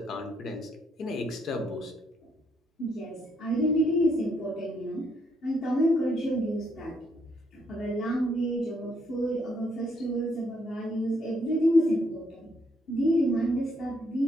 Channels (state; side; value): normal; both; correlation 0.73